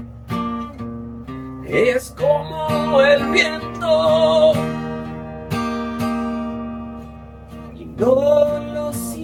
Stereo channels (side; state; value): both; identical; correlation 1.00